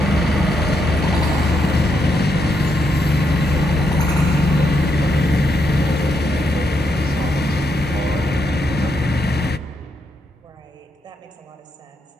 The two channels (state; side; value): normal; both; correlation 0.80